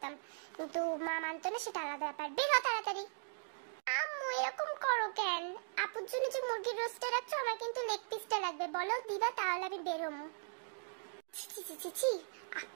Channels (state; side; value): silent; left; digital silence